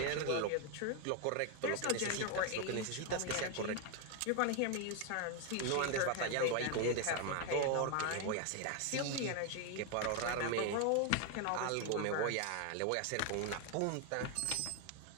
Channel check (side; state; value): both; different; correlation 0.01